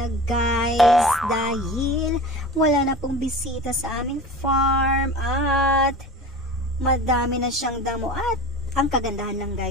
guys, dahil wala na pong bisita sa aming farm at madami na siyang damo. At ang kagandahan lang,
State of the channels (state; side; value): normal; both; correlation 0.35